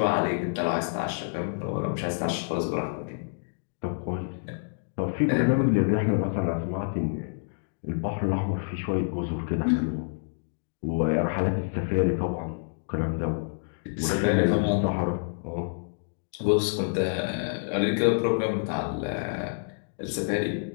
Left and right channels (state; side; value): silent; right; digital silence